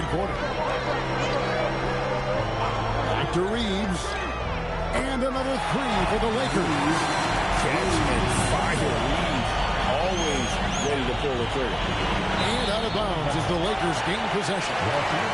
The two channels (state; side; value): identical; both; correlation 1.00